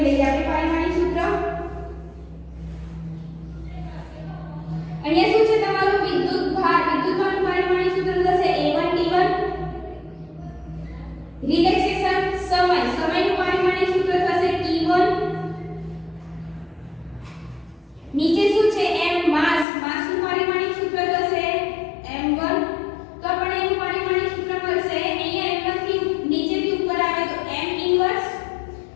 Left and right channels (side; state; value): right; drops out; at 19.7 s